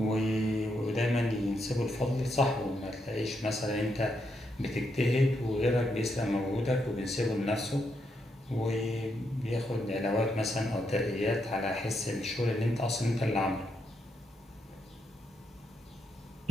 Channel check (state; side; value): normal; both; correlation 0.80